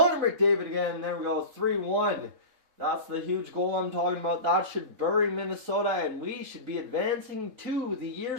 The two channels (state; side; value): late; left; 3.7 ms